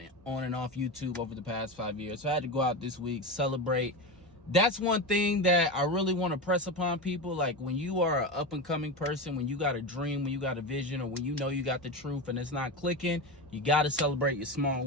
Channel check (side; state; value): both; normal; correlation 0.20